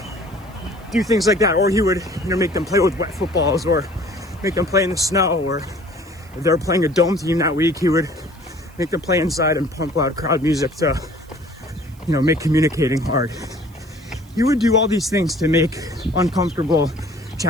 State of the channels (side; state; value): right; noise; hiss, 28 dB below the sound